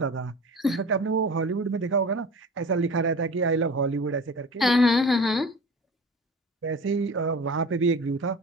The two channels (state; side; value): normal; both; correlation 0.37